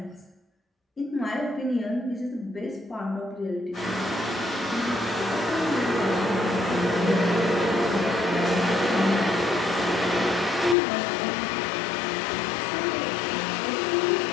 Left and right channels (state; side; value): drops out; right; at 10.8 s